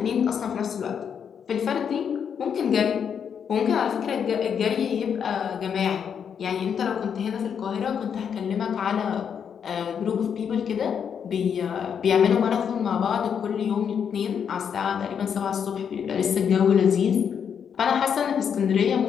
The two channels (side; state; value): right; quieter; 7.5 dB